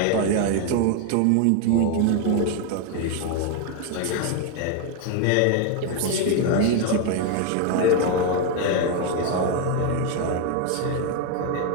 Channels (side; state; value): both; different; correlation 0.01